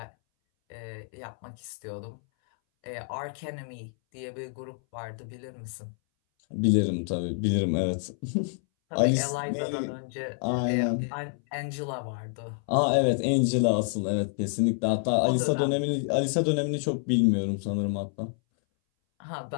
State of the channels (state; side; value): silent; right; 59 dB below the other